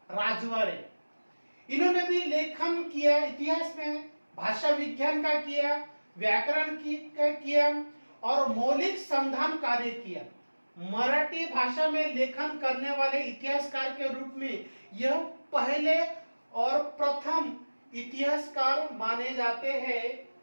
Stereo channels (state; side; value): inverted; both; correlation -1.00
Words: राजवाड़े। इन्होंने भी लेखन किया, इतिहास में भाषा विज्ञान का किया, व्याकरण का किया और मौलिक संधान कार्य किया। मराठी भाषा में लेखन करने वाले इतिहासकार के रूप में यह पहले और प्रथम इतिहासकार माने जाते हैं।